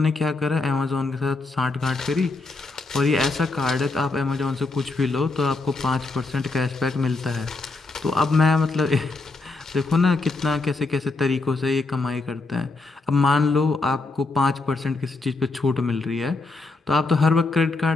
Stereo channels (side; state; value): right; quieter; 3.5 dB